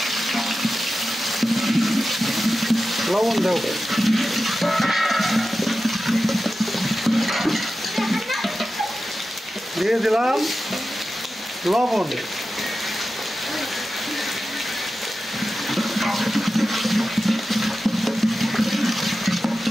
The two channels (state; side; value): normal; both; correlation 0.93